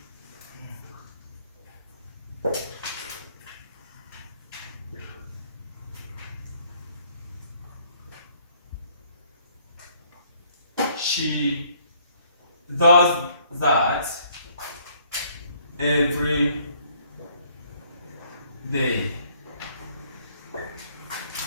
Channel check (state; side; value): inverted; both; correlation -0.63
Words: She does that every day.